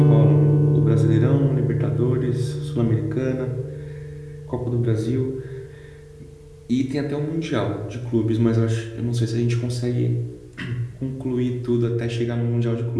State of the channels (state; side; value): identical; both; correlation 1.00